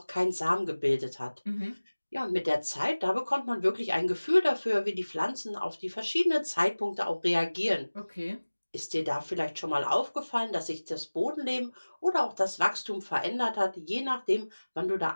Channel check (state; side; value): inverted; both; correlation -1.00